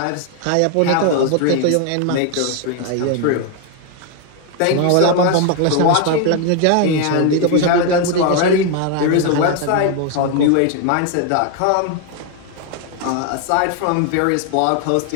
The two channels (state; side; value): different; both; correlation 0.01